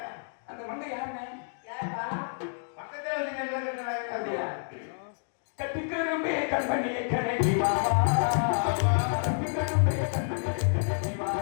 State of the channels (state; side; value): silent; right; digital silence